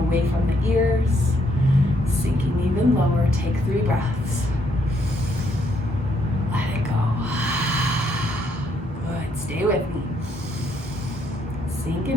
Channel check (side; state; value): both; normal; correlation 0.72